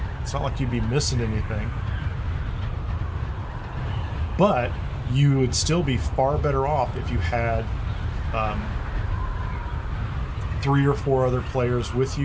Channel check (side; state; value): both; identical; correlation 1.00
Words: you'd be missing anything. But you would still be far better off if you had 3 or 4 other players with